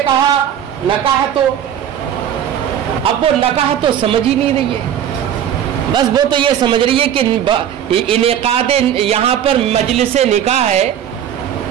کہا نکاح تو، اب وہ نکاح تو سمجھ ہی نہیں رہی ہے. بس وہ تو یہ سمجھ رہی ہے کہ انعقاد یہاں پر مجلس نکاح ہے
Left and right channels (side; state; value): left; quieter; 10.0 dB